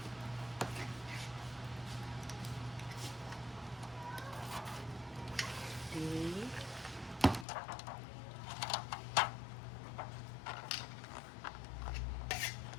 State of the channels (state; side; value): drops out; right; at 7.5 s